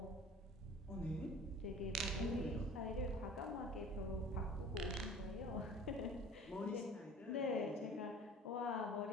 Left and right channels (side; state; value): both; normal; correlation 0.44